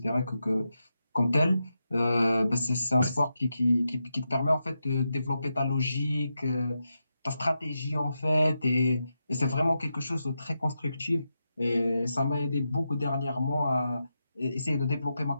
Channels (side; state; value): both; inverted; correlation -0.88